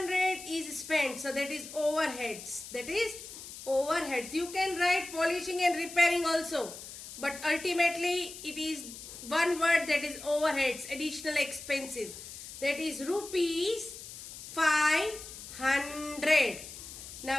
is spent, so that is overheads. That is overheads. You can write polishing and repairing also, but ultimately it is one word, that is overheads, additional expenses. That is rupees 500.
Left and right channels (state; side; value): noise; left; hiss, 13 dB below the sound